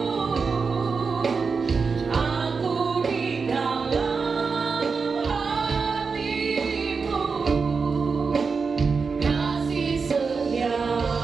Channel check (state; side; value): quieter; left; 5.0 dB